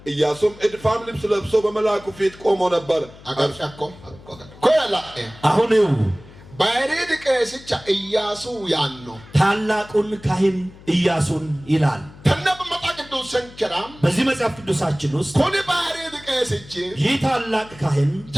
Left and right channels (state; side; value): noise; left; hum, 21 dB below the sound